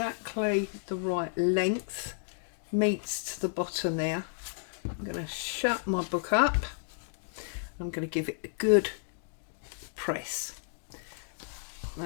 the right length, meets to the bottom there. I'm going to shut my book up. I'm going to give it a good press.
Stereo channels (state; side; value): silent; right; digital silence